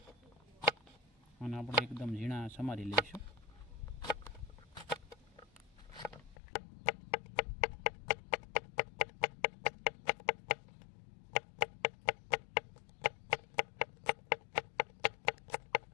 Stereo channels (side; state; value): right; drops out; at 6.4 s